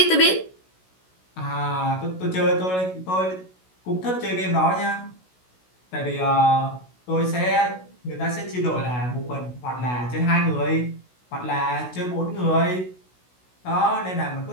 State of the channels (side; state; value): right; late; 16 ms